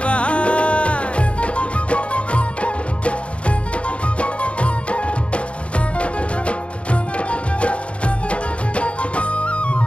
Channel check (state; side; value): late; right; 0.061 ms